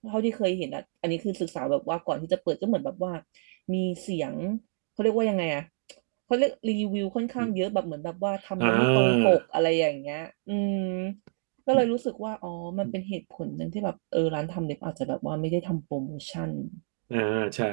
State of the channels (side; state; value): left; silent; digital silence